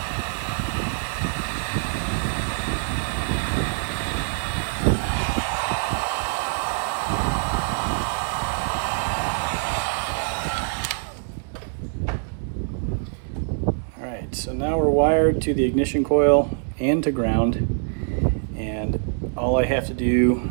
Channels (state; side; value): silent; left; 62 dB below the other